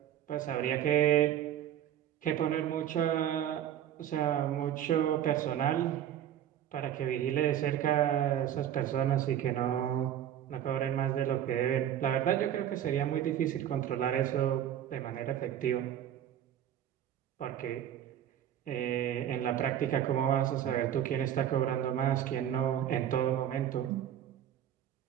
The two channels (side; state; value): left; quieter; 10.6 dB